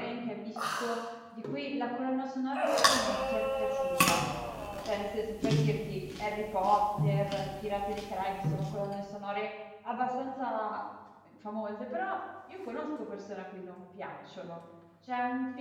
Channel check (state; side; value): identical; both; correlation 1.00